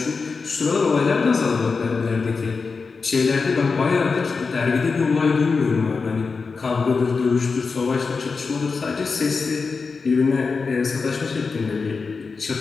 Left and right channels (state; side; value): quieter; right; 4.7 dB